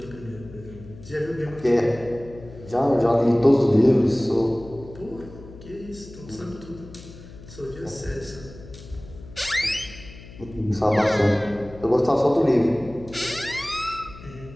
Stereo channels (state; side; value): noise; left; hum, 17 dB below the sound